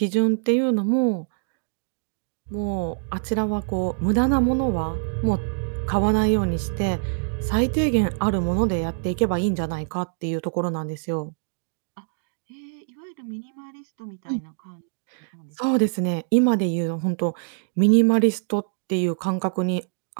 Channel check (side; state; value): left; silent; digital silence